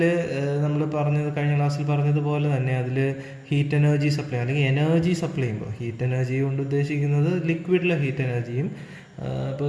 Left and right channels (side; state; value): both; identical; correlation 1.00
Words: നമ്മൾ കഴിഞ്ഞ ക്ലാസ്സിൽ പറഞ്ഞതുപോലെ തന്നെ അതിൽ ഹീറ്റ് എനർജി സപ്ലൈ അല്ലെങ്കിൽ എനർജി സപ്ലൈ ചെയ്യുമ്പോൾ ഹീറ്റ് എനർജി കൊണ്ട് ഉദ്ദേശിക്കുന്നത് ലിക്വിഡിലെ ഹീറ്റ് എനർജിയും,